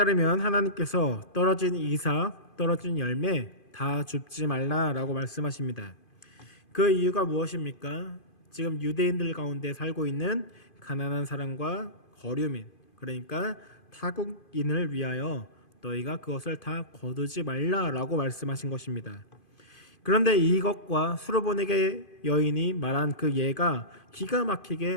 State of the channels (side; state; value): right; late; 2.5 ms